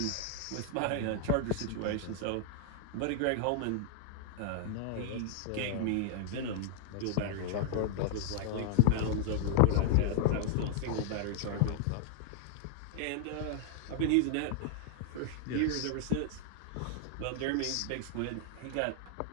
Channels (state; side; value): different; both; correlation -0.01